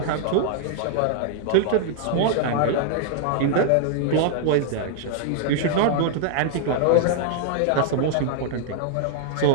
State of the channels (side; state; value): both; different; correlation -0.01